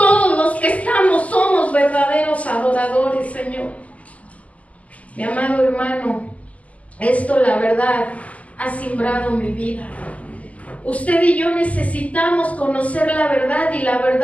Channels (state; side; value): late; right; 0.071 ms